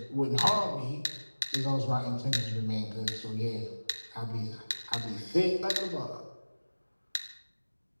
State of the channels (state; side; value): inverted; both; correlation -1.00